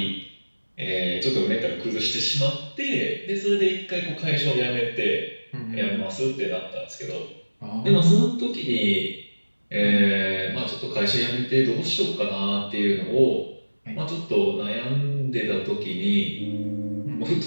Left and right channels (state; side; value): inverted; both; correlation -1.00